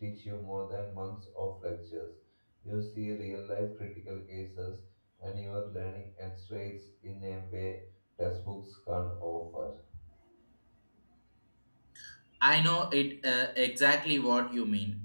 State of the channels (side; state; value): both; inverted; correlation -1.00